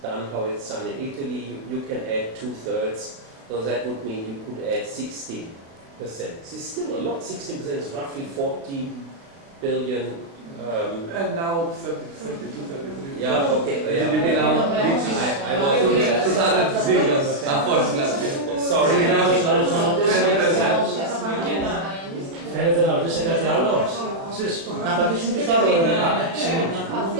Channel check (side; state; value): left; late; 36 ms